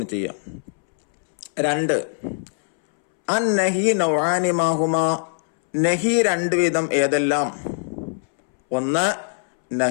ചെയ്യാം. 2 അൻ നഹി നൗആനി മാഹുമാ, നഹി 2 വിധം ഏതെല്ലാം? 1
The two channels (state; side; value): silent; right; 64 dB below the other